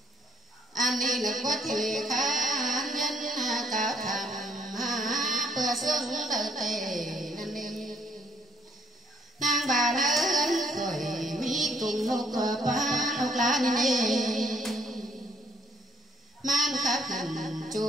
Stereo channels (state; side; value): normal; both; correlation 0.67